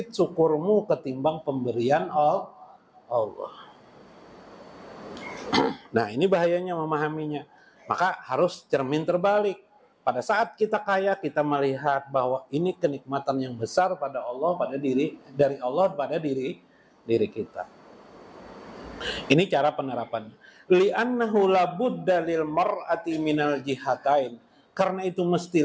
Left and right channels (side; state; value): both; identical; correlation 1.00